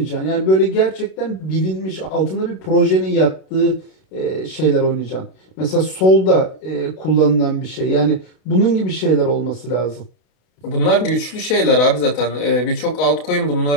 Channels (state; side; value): late; right; 32 ms